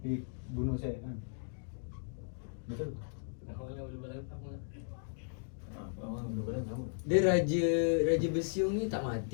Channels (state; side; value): silent; right; digital silence